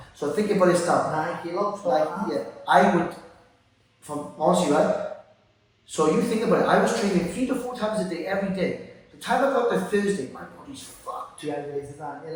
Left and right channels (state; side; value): identical; both; correlation 1.00